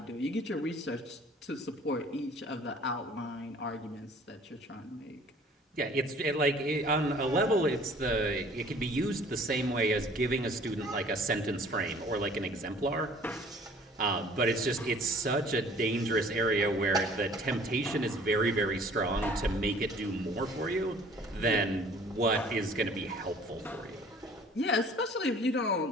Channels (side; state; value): both; normal; correlation 0.52